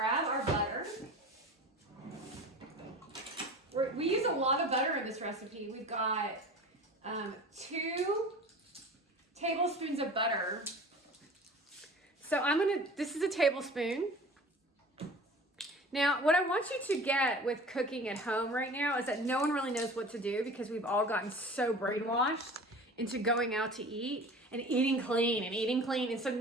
our butter. We use a lot of butter in this recipe. We've got 2 tablespoons of butter. So this is a tablespoon. Now, what I want you to get with cooking at home right now is that no one really knows what to do because we've all gotten so brainwashed into going out to eat and eating clean and eating clean. And so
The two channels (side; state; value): both; normal; correlation 0.39